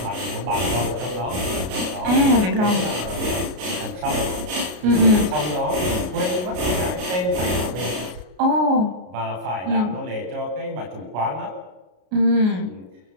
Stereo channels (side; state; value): left; late; 33 ms